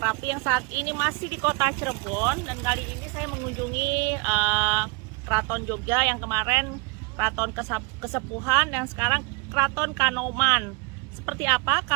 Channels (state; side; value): quieter; left; 29.5 dB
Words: yang saat ini masih di kota Cirebon. Dan kali ini saya mengunjungi Keraton Jogja yang kemarin Keraton Kesepuhan dan sekarang Keraton Kanoman. Seperti apa